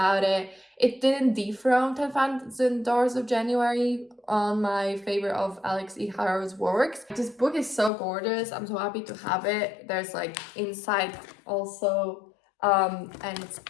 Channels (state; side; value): drops out; right; at 7.9 s